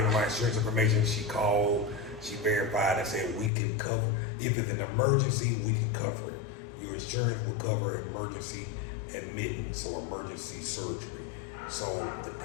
her my insurance information. She called, she verified and said we can cover, if it's an emergency, we can cover it. Your insurance will cover emergency admittance or emergency surgery. So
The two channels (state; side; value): drops out; right; at 3.5 s